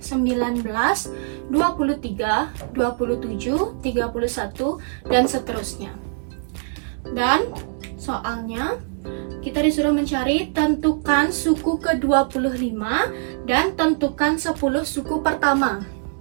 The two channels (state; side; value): silent; left; digital silence